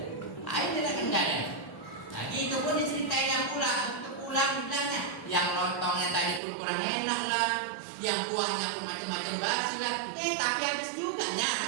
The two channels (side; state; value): left; drops out; at 6.4 s